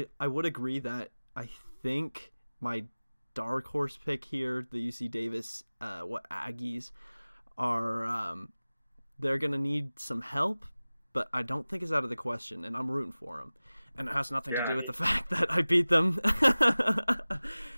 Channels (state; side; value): inverted; both; correlation -0.99